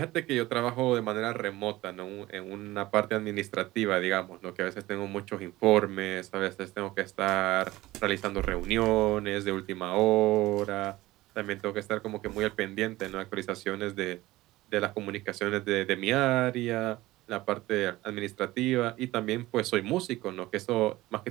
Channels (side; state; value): left; quieter; 18.0 dB